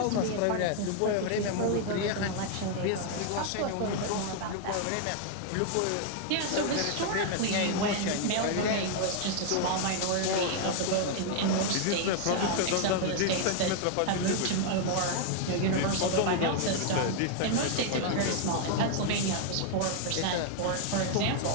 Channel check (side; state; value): both; different; correlation 0.00